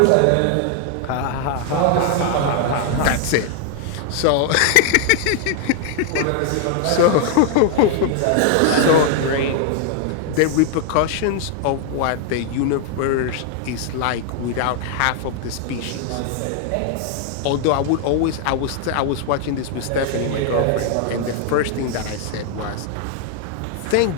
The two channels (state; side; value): different; both; correlation 0.00